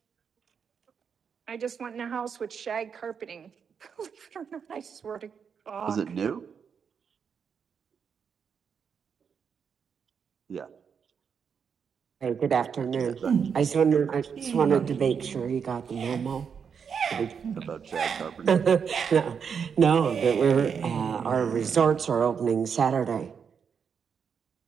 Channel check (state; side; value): quieter; left; 6.7 dB